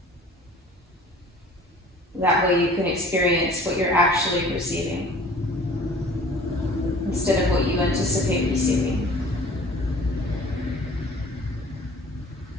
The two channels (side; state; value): both; normal; correlation 0.48